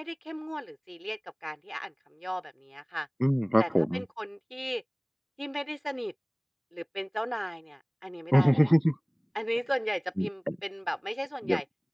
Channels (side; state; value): both; identical; correlation 1.00